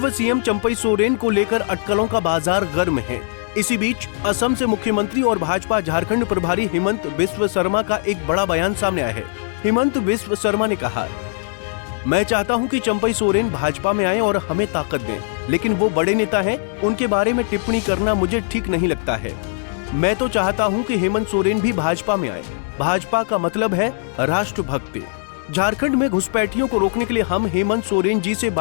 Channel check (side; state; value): right; silent; 62 dB below the other